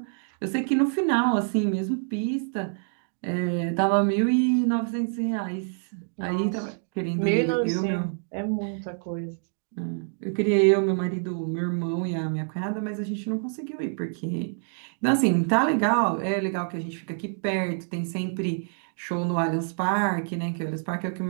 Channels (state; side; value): silent; left; digital silence